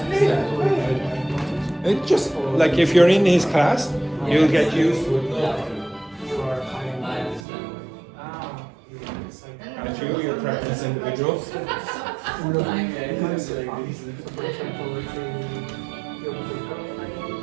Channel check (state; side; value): drops out; left; at 7.5 s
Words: It's just like if you're in his class, you'll get used to it. Aren't you? You're practice individuals.